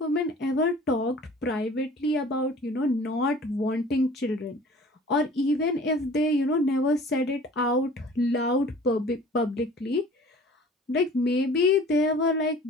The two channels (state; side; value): normal; both; correlation 0.47